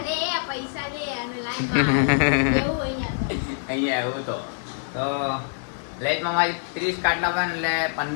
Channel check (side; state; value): right; silent; 58 dB below the other